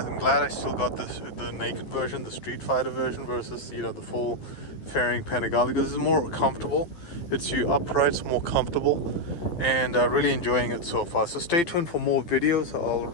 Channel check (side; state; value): right; late; 12 ms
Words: glad I still got the naked version, the Streetfighter version, versus the full fairing Panigale, because it's more comfortable. It's upright, it's more comfortable, and really enjoying it so far. So stay tuned for more videos.